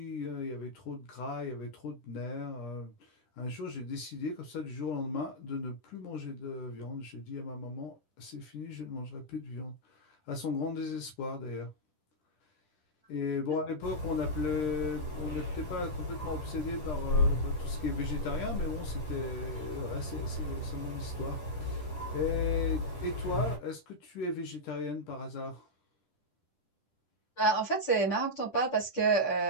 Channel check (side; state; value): right; late; 10 ms